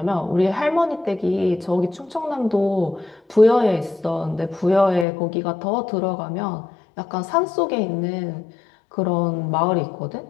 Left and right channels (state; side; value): drops out; right; at 5.1 s